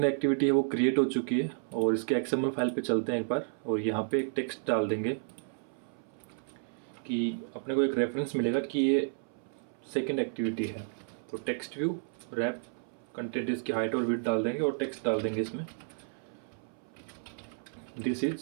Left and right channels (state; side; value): silent; left; 56 dB below the other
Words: एक्टिविटी है वो क्रिएट हो चुकी है और इसके XML फाइल पे चलते हैं एक बार और यहाँ पे एक टेक्स्ट डाल देंगे कि अपने को एक रेफरेंस मिलेगा कि ये सेकंड एक्टिविटी है। तो टेक्स्ट व्यू रैप कंटेंट इसकी हाइट और विड्थ डाल देंगे और टेक्स्ट डाल देंगे इसमें दिस इज